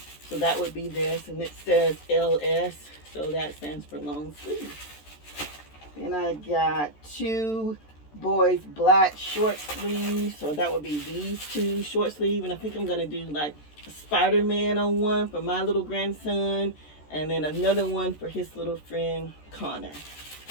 So that would be this, and it says LS, so that stands for long sleeve. Then I got 2 boys black short sleeves, so that would be these 2 short sleeve, and I think I'm gonna do like a Spider-Man on one for my little grandson, and then another one for his little friend Connor.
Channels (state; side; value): late; right; 14 ms